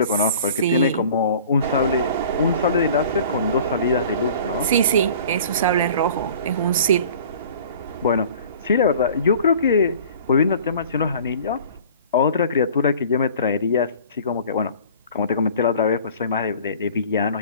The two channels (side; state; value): both; inverted; correlation -0.46